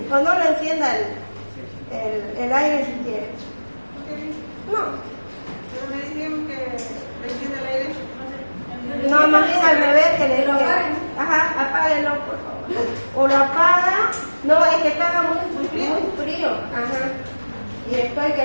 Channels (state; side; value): inverted; both; correlation -1.00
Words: o no lo encienda el aire si quiere. No. ¿Me decían que le encienda el aire? No, más bien al revés, que le diga. Ajá, apáguelo, por favor. O lo apaga. No, es que estaba muy frío. Ajá. Y estoy